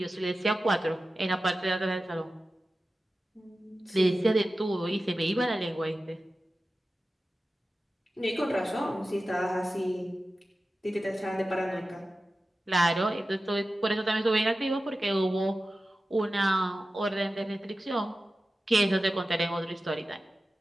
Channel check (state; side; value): normal; both; correlation 0.94